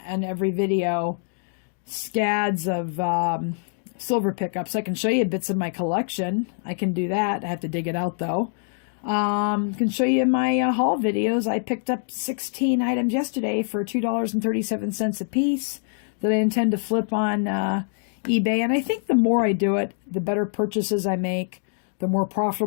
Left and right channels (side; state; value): right; silent; digital silence